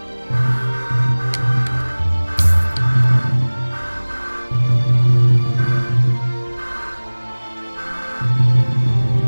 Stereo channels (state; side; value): inverted; both; correlation -1.00